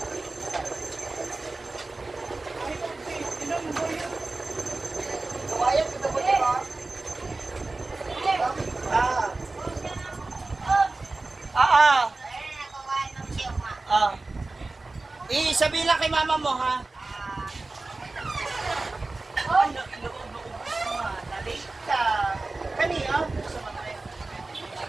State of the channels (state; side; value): quieter; left; 3.3 dB